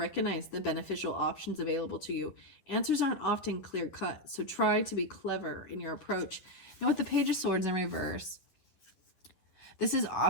the beneficial options available to you. Answers aren't often clear cut, so try to be clever in your approach. Now, with the Page of Swords in reverse, this is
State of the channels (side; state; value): right; late; 11 ms